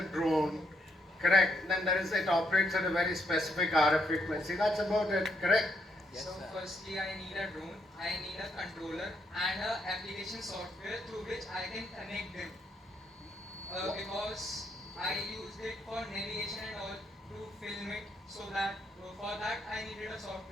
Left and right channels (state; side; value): normal; both; correlation 0.77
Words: drone, correct? Then it operates at a very specific RF frequency. That's about it, correct? Yes, so firstly I need a drone, I need a controller and a application software through which I can connect them. Because I used it for navigation and all to film it, so that for that I needed a